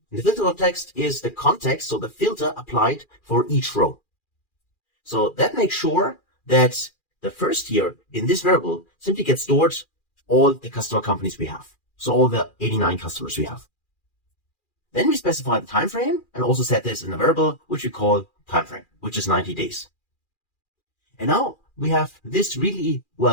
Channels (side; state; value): right; late; 2.4 ms